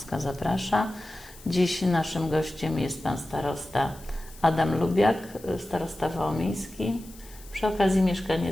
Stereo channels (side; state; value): left; noise; hiss, 21 dB below the sound